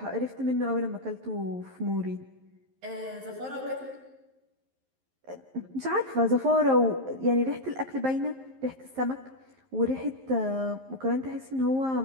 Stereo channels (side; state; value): left; late; 11 ms